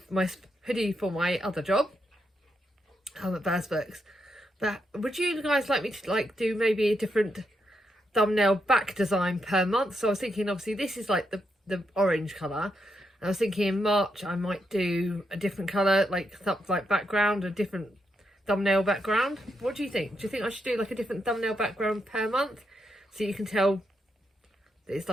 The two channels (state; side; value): normal; both; correlation 0.82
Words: for my other job at Baz Books. But would you guys like me to do maybe a different thumbnail back design per month? So I was thinking, obviously this is like the orange colour, and I was thinking in March I might do a different colour, like background, a different thumbnail background. What do you think? Do you think I should do like a different thumbnail background per month so you can tell that it's